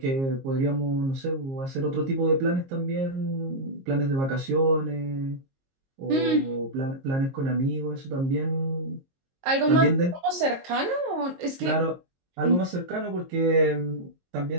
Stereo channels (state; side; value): late; left; 22 ms